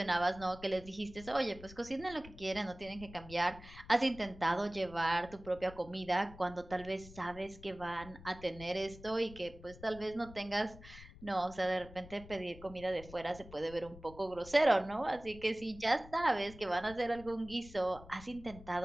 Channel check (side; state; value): left; noise; rumble, 17 dB below the sound